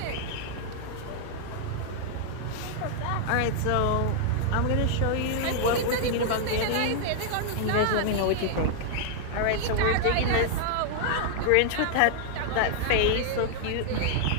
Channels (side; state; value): both; different; correlation -0.01